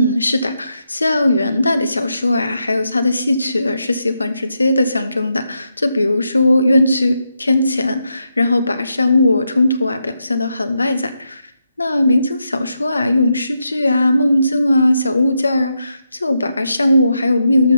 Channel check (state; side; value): inverted; both; correlation -0.83